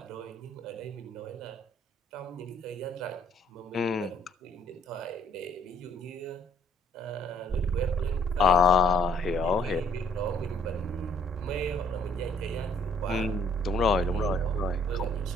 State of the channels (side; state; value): both; normal; correlation 0.63